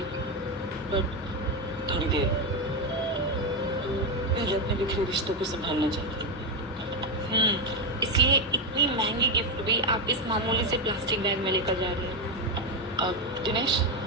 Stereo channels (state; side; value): normal; both; correlation 0.08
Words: बट थोड़ी देर पहले अपने बिखरे रिश्तों को संभालना चाहती हूँ। इसलिए इतनी महंगी गिफ्ट भी आप इस मामूली से प्लास्टिक बैग में लेकर जा रहे हैं। अब दिनेश,